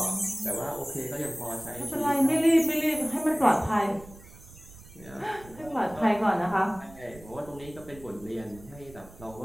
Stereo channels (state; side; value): noise; right; rumble, 19 dB below the sound